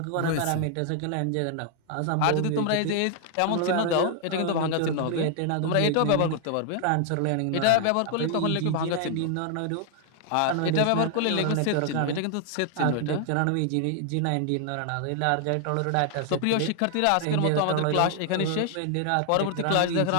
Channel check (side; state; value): both; different; correlation 0.00